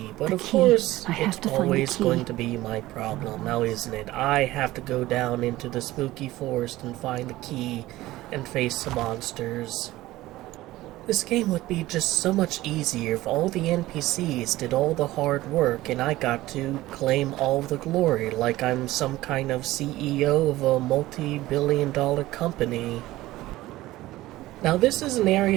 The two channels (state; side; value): quieter; left; 17.0 dB